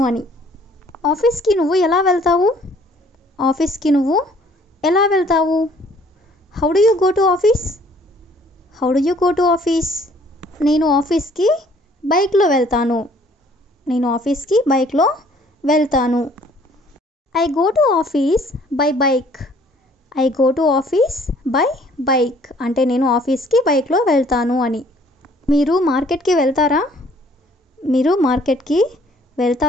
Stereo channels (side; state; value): both; normal; correlation 0.59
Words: అని. ఆఫీస్కి నువ్వు ఎలా వెళ్తావు? ఆఫీస్కి నువ్వు ఎలా వెళ్తావు? How do you go to office? How do you go to office? నేను ఆఫీస్కి బైక్లో వెళ్తాను. నేను ఆఫీస్కి బైక్లో వెళ్తాను. I go to office by bike. I go to office by bike అంటే నేను ఆఫీస్కి బైక్లో వెళ్తాను అని. మీరు మార్కెట్కి వెళ్తారా? మీరు మార్కెట్కి